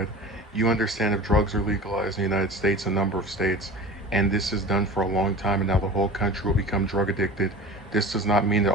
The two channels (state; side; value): normal; both; correlation 0.36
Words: "You understand if drugs are legalized in the United States, a number of states, and this is done for a long time, and now the whole country will become drug addicted. This does not mean that